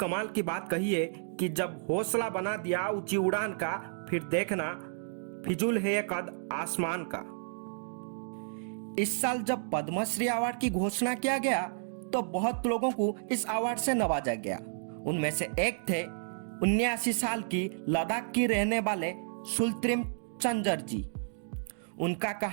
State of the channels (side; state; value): left; silent; digital silence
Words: की बात कही है कि जब हौसला बना दिया ऊंची उड़ान का, फिर देखना फिजूल है ये कद आसमान का। इस साल जब पद्मश्री अवार्ड की घोषणा किया गया तो बहुत लोगों को इस अवार्ड से नवाजा गया। उनमें से एक थे 79 साल की लद्दाख की रहने वाले सुल्त्रिम चंजर जी। उनका